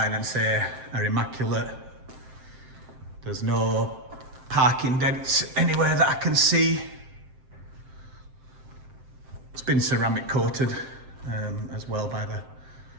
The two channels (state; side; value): late; left; 7.6 ms